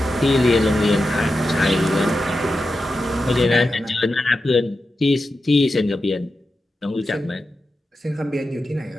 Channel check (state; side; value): normal; both; correlation 0.90